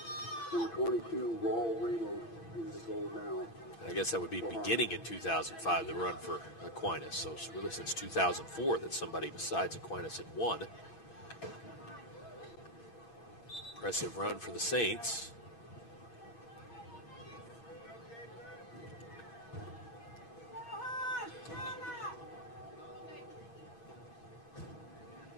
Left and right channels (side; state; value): right; late; 8.7 ms